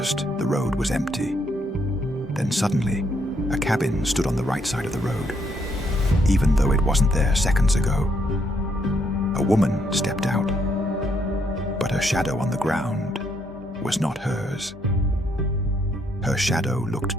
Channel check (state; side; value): normal; both; correlation 0.73